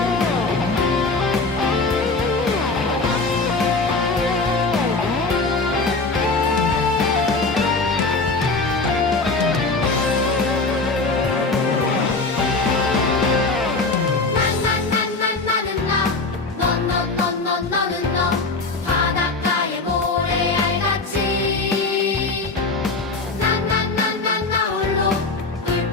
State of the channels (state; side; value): quieter; right; 3.6 dB